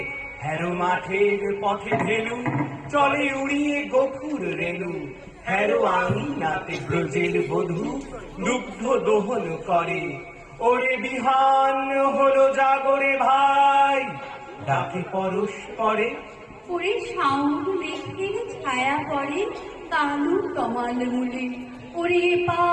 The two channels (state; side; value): identical; both; correlation 1.00